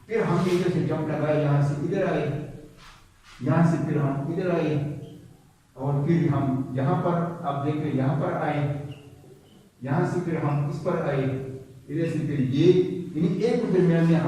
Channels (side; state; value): both; identical; correlation 1.00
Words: फिर हमने इधर से जंप लगाया, यहाँ से इधर आए, यहाँ से फिर हम इधर आए, और फिर हम यहाँ पर आप देखें यहाँ पर आए, यहाँ से फिर हम इस पर आए, इधर से फिर ये, यानी एक के दरमियान में